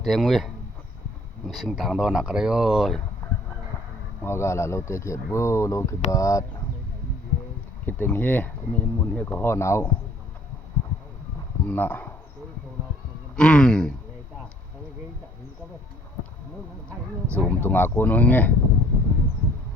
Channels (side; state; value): both; normal; correlation 0.58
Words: Sing Tang Do Nakarayo Magala Lo Tekit Bu Lo Kibat Kiting He Ni Mun He Ko Ho Nau Na Zoom Tung Aku Nunge